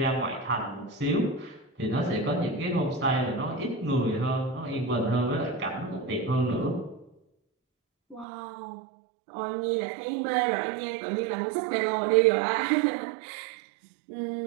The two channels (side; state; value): left; drops out; at 8.2 s